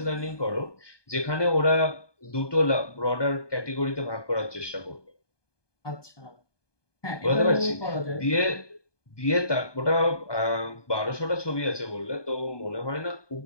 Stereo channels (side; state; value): right; late; 1.2 ms